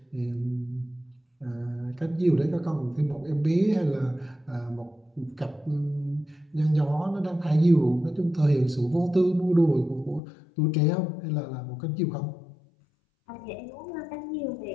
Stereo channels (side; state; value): right; drops out; at 10.2 s